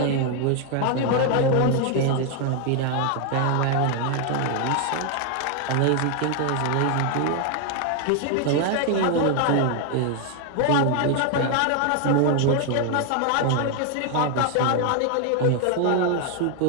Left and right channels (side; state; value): both; different; correlation 0.00